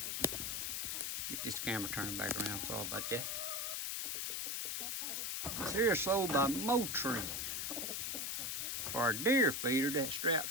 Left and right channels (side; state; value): left; noise; hiss, 1 dB below the sound